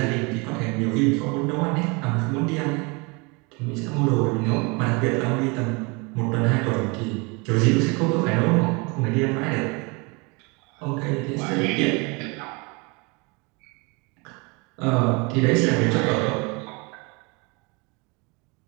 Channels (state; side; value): quieter; left; 28.9 dB